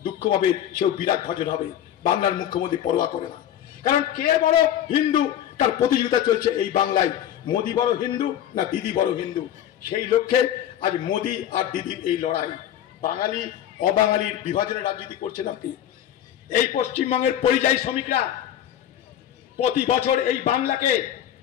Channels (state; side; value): quieter; right; 10.9 dB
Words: দুঃখ পাবে, সেও বিরাট ভাজন হবে। বাংলার মুখ্যমন্ত্রী পরোয়া করে না, কারণ কে বড় হিন্দু তার প্রতিযোগিতা চলছে এই বাংলায়। মোদী বড় হিন্দু না দিদি বড় হিন্দু, সেই লক্ষ্যে আজ মোদী আর দিদির এই লড়াই। বাঙালি অবাঙালির বিভাজনের রাজনীতি করছেন আপনি। এই পশ্চিমবঙ্গের পরিযায়ী শ্রমিকরা প্রতি বছর এই বাংলাকে